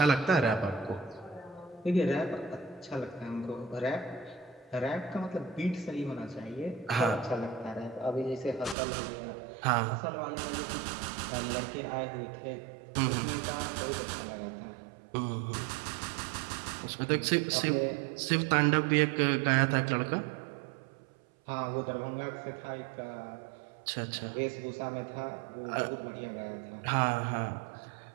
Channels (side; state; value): left; drops out; at 8.8 s